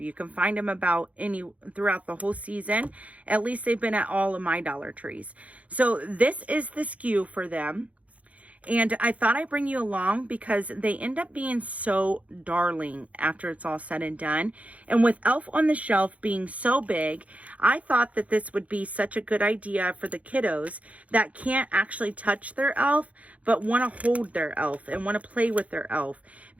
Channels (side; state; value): left; late; 0.067 ms